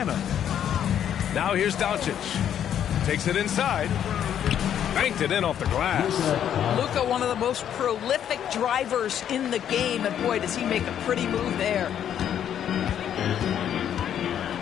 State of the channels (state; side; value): quieter; right; 9.7 dB